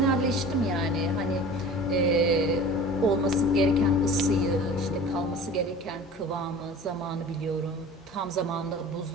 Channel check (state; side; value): normal; both; correlation 0.41